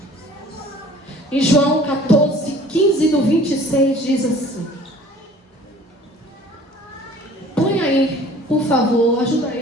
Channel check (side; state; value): both; normal; correlation 0.50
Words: Em João 14, 15 do 26 diz assim. Põe aí, por favor, ajuda